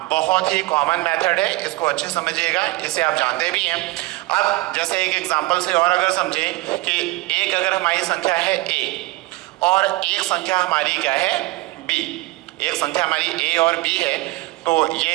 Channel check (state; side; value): quieter; left; 20.2 dB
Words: बहुत ही कॉमन मेथड है, इसको अच्छे समझिएगा, इसे आप जानते भी हैं। अब जैसे एक एग्जांपल से और अगर समझें कि एक अगर हमारी संख्या है a और एक संख्या हमारी क्या है b, एक संख्या हमारी a और b है, तो ये